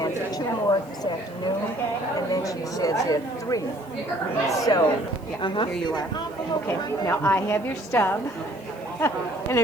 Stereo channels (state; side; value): noise; right; hiss, 28 dB below the sound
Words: for 2 more this afternoon, and then she says there are 3. So, Here you are. Okay, now I have your stub, and